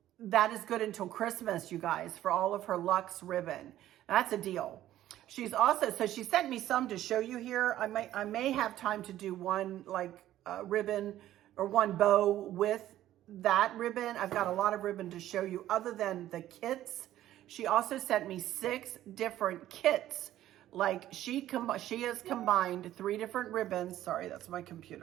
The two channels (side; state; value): left; quieter; 13.3 dB